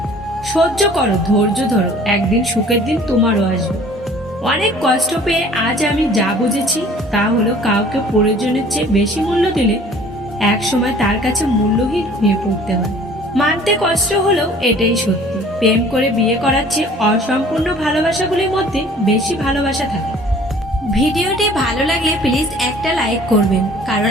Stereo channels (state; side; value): normal; both; correlation 0.51